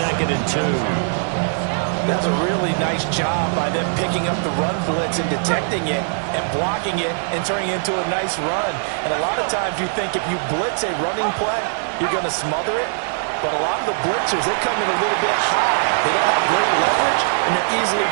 and 2. That's a really nice job by them picking up the run blitz and detecting it and blocking it and turning it into a nice run. And a lot of times you think if you blitz a running play, you're going to smother it. But a lot of the blitzers, they come in a little bit high. They don't have great leverage, and they're easily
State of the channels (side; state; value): left; silent; digital silence